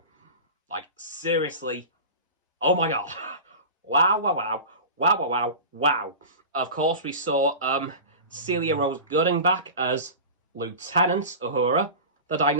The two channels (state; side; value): inverted; both; correlation -0.31